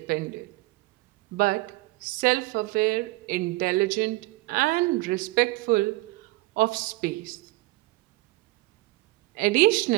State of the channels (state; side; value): quieter; left; 20.9 dB